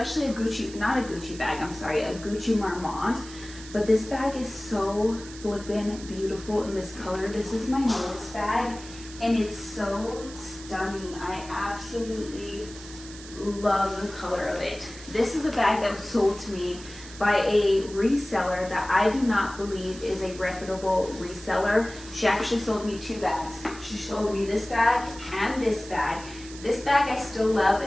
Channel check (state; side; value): noise; right; hiss, 16 dB below the sound